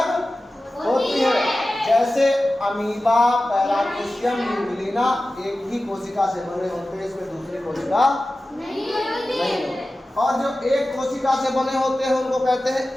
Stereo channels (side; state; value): both; normal; correlation 0.95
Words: होती है। जैसे अमीबा, पैरामीशियम, न्यूक्लिना एक ही कोशिका से बने होते हैं, इसमें दूसरी कोशिका नहीं होती। और जो एक कोशिका से बने होते हैं उनको कहते हैं